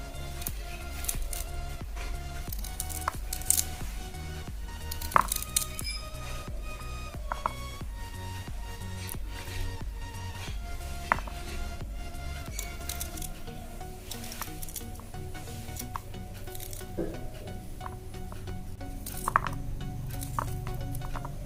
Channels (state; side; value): identical; both; correlation 1.00